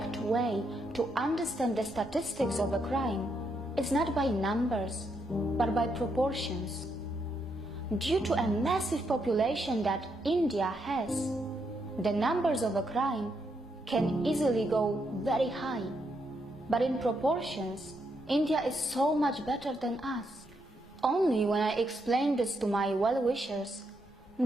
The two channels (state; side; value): normal; both; correlation 0.79